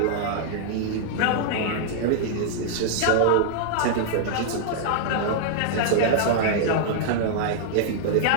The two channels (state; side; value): different; both; correlation -0.01